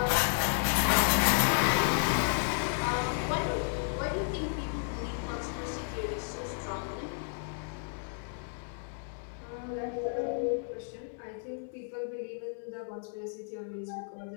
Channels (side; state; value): right; silent; 56 dB below the other